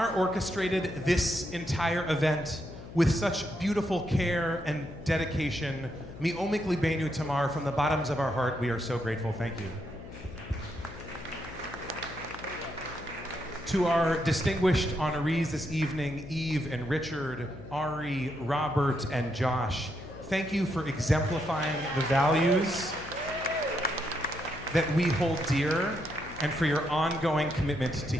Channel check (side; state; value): left; noise; hum, 14 dB below the sound